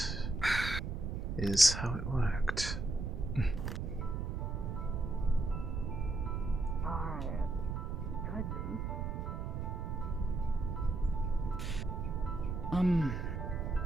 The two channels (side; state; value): right; noise; rumble, 2 dB below the sound